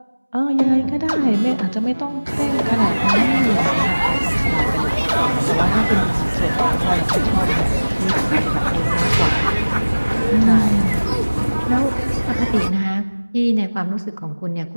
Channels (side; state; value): both; inverted; correlation -1.00